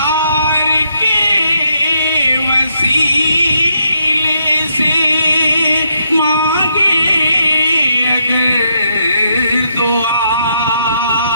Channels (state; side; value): inverted; both; correlation -0.77